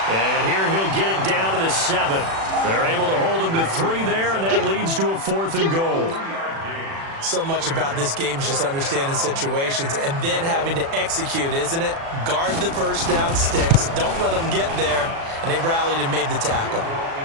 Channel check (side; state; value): left; late; 36 ms